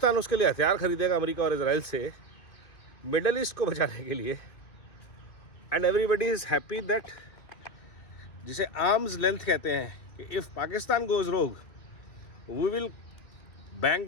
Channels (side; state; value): right; late; 2.3 ms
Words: उसके लिए हथियार खरीदेगा अमेरिका और इजराइल से मिडल ईस्ट को बचाने के लिए। And everybody is happy that, जिसे आर्म्स लेंथ कहते हैं, कि if Pakistan goes rogue we will bank